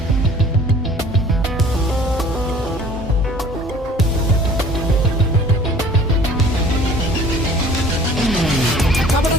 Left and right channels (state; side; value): normal; both; correlation 0.49